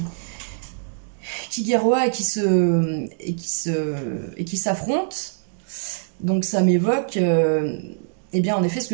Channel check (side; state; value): left; silent; digital silence